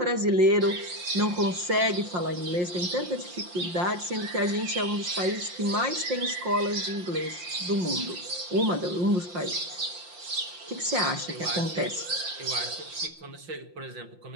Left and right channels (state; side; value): late; left; 5.7 ms